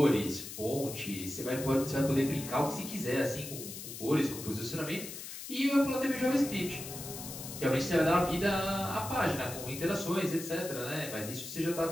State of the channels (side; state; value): left; noise; hiss, 10 dB below the sound